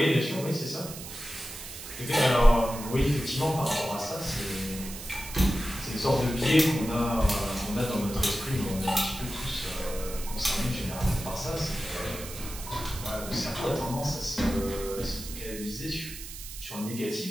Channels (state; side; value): noise; right; hiss, 11 dB below the sound